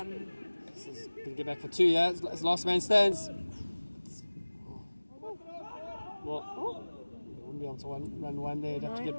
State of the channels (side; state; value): both; inverted; correlation -1.00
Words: This is going to get back for 2, yeah? It's last man stands. Well, they wouldn't be able to run one there. They'd have to get